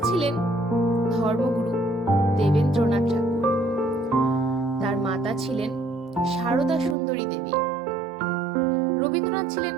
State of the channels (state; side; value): drops out; left; at 7.0 s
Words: ছিলেন ধর্মগুরু দেবেন্দ্রনাথ ঠাকুর। তার মাতা ছিলেন সারদা সুন্দরী দেবী। রবীন্দ্রনাথ ছিলেন